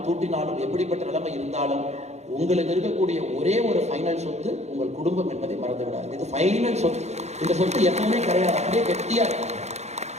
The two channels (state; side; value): late; left; 0.32 ms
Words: தூட்டினாலும், எப்படிப்பட்ட நிலைமை இருந்தாலும், உங்களுக்கு இருக்கக்கூடிய ஒரே ஒரு ஃபைனல் சொத்து உங்கள் குடும்பம் என்பதை மறந்து விடாது. இது ஃபைனல் சொத்து. இந்த சொத்து எப்பவுமே கிடையாது, அப்படியே கெட்டியா இருக்கும்.